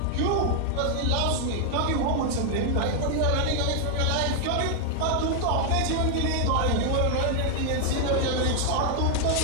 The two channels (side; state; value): both; different; correlation 0.00